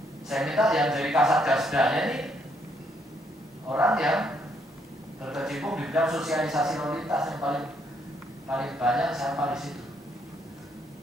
Saya minta yang dari Kasatgasdanya ini orang yang berkecimpung di bidang sosialisasi lalu lintas yang paling banyak siapa di situ.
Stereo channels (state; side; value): normal; both; correlation 0.72